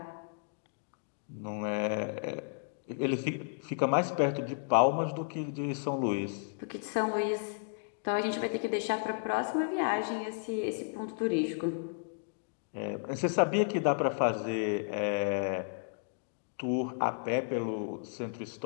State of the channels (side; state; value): right; silent; digital silence